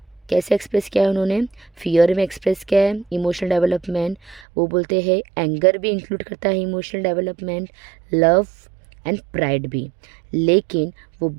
कैसे एक्सप्रेस किया है उन्होंने? फियर में एक्सप्रेस किया है इमोशनल डेवलपमेंट। वो बोलते हैं एंगर भी इंक्लूड करता है emotional development, love and pride भी, लेकिन वो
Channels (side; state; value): left; drops out; at 4.5 s